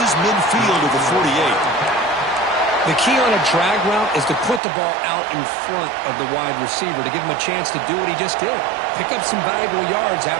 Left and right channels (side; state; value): left; drops out; at 4.6 s